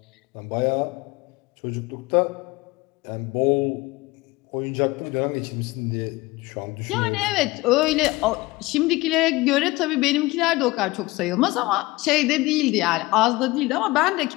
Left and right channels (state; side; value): quieter; right; 21.0 dB